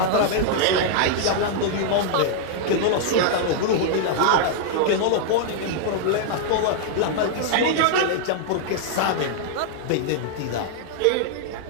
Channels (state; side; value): different; both; correlation -0.01